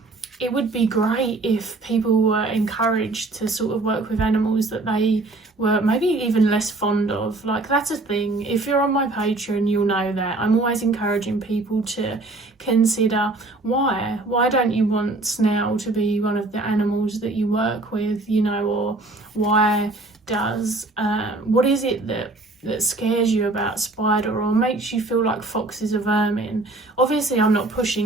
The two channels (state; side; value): quieter; left; 3.0 dB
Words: it would be great if people were encouraged to sort of work with animals that they were maybe even less fond of. Like, that's a thing. If you're on my Patreon, you'll know that I'm always encouraging people to consider why don't you want snail to be one of the animals that you work with, you know, or why does what is it that scares you about spider or makes you feel like fox is a vermin. Obviously I'm not